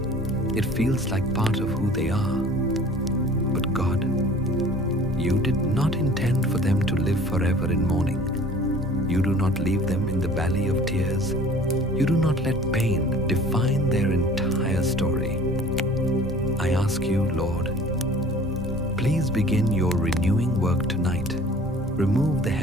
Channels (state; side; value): normal; both; correlation 0.48